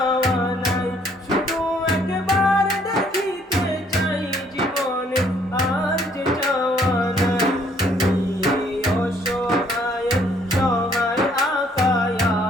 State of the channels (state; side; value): normal; both; correlation 0.64